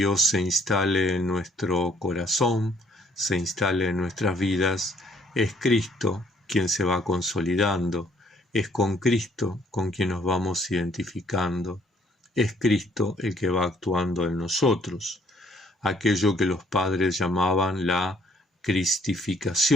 se instale en nuestro corazón, se instale en nuestras vidas, es Cristo quien se va consolidando, es con Cristo con quien nos vamos identificando, es Cristo el que va actuando en nosotros, aquello que los padres llamaban la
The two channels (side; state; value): both; normal; correlation 0.63